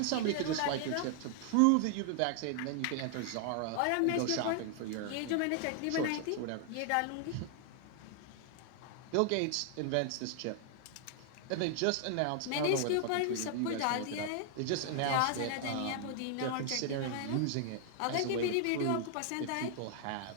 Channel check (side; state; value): both; different; correlation 0.00